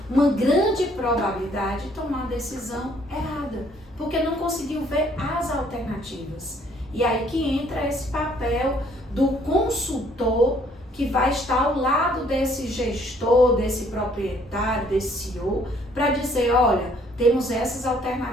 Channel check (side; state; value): both; normal; correlation 0.63